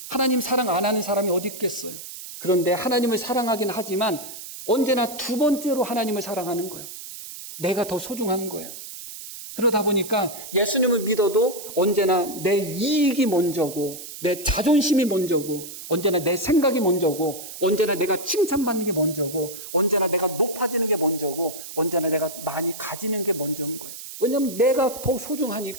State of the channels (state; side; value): noise; right; hiss, 12 dB below the sound